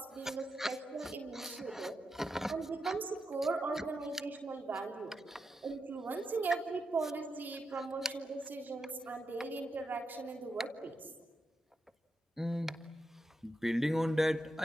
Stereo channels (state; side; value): normal; both; correlation 0.87